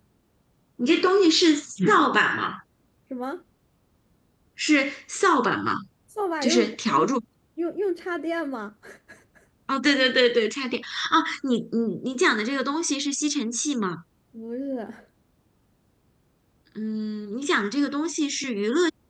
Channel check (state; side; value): identical; both; correlation 1.00